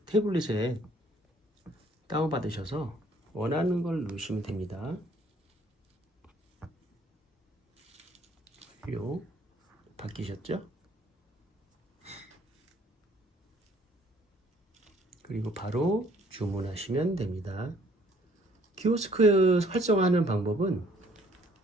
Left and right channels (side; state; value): both; normal; correlation 0.61